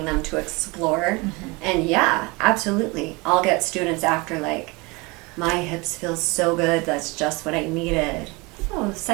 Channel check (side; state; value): left; quieter; 26.0 dB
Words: them to explore. And yeah, absolutely. I'll get students after like, my hips feel so good, that's just what I needed. Oh,